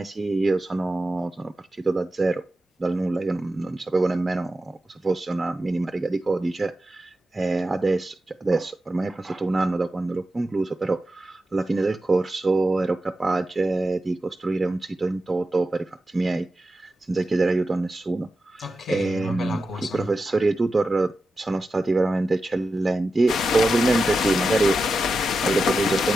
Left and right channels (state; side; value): normal; both; correlation 0.91